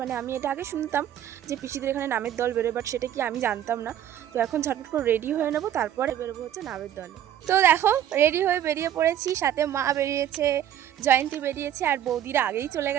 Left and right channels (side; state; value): left; quieter; 10.9 dB